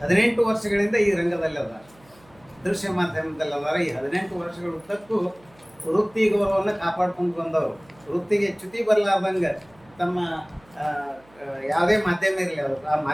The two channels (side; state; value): right; noise; hum, 29 dB below the sound